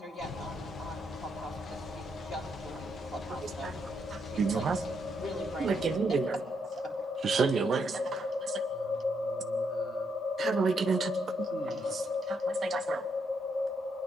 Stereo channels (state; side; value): normal; both; correlation 0.77